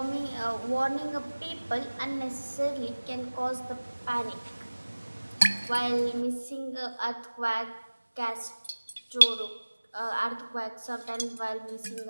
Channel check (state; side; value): inverted; both; correlation -1.00